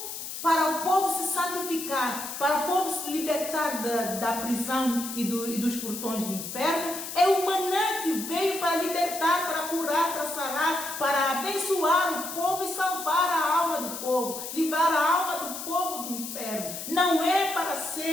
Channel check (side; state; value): left; noise; hiss, 8 dB below the sound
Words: povo se santificar, para o povo se libertar da prisão e dos portões do inferno. É o maná que veio para libertar, para curar, para sarar, para abençoar o povo e salvar a alma do povo, livrar a alma do povo do inferno. Não é para